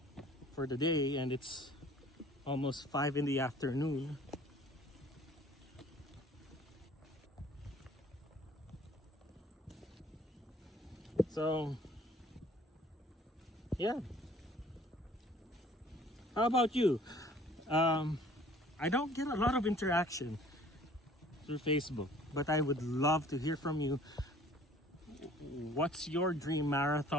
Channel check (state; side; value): normal; both; correlation 0.53